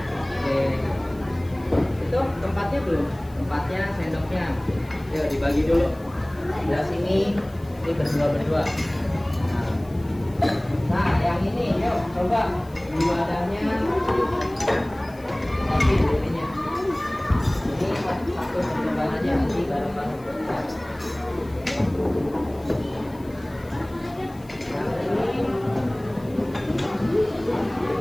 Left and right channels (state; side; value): noise; left; hiss, 26 dB below the sound